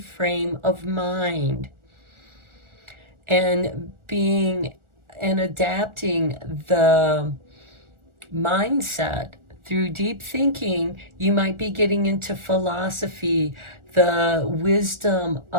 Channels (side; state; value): left; late; 1.4 ms